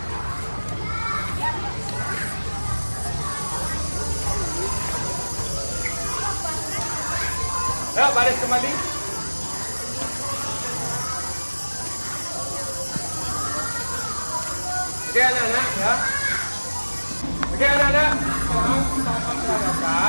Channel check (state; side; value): inverted; both; correlation -1.00